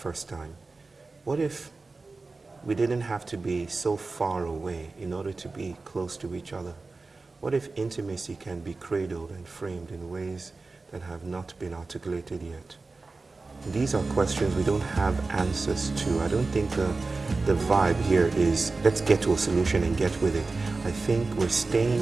time? What if we didn't have to be so far away in order to be close to each other? What if intimacy can be cradled and framed in ways that have not been articulated yet? These are questions we don't have answers to. I don't think the vibe here is let's get to a solution and get with it. I think we're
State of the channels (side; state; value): left; quieter; 3.7 dB